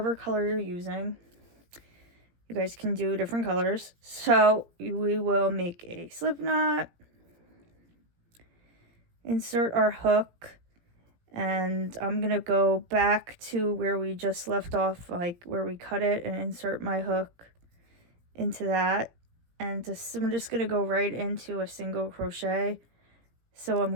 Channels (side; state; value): left; late; 17 ms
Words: color you're using. You guys can do different colors. So we will make a slip knot, insert our hook, and I'm gonna go back to where we just left off, like where we cut it, and insert my hook into that, and I'm just gonna go right into a single crochet. So I'm